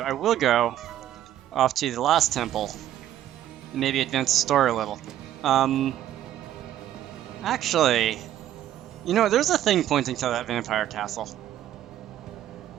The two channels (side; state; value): left; quieter; 12.0 dB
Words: will go off to the last temple, and maybe advance the story a little. Actually, you know, there's a thing pointing to that vampire castle,